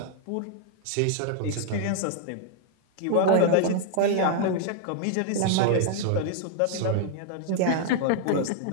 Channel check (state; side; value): different; both; correlation 0.00